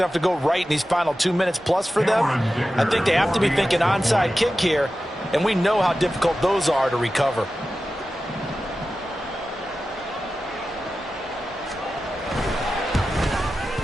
to go right in these final 2 minutes plus for them. I think they have to be thinking onside kick here, and we know how difficult those are to recover.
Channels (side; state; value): both; normal; correlation 0.93